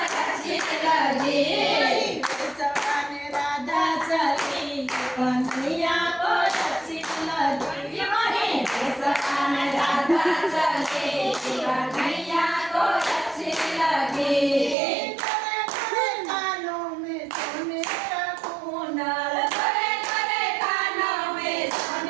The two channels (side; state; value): left; drops out; at 14.8 s